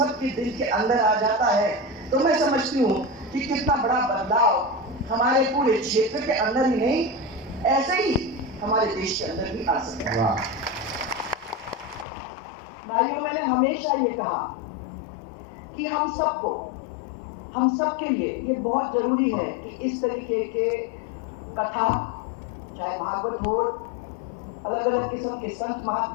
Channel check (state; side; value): drops out; right; at 12.1 s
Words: दिल के अंदर आ जाता है तो मैं समझती हूँ कि कितना बड़ा बदलाव हमारे पूरे क्षेत्र के अंदर ही नहीं, ऐसे ही हमारे देश के अंदर भी आ सकता है। भाइयों, मैंने हमेशा ये कहा कि हम सबके लिए ये बहुत जरूरी है कि इस तरीके के कथा, चाहे भागवत हो, अलग अलग किस्म के संत